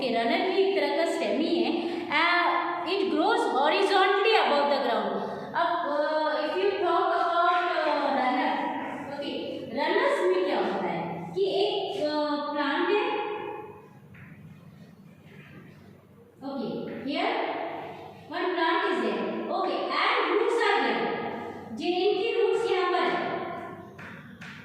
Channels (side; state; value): both; identical; correlation 1.00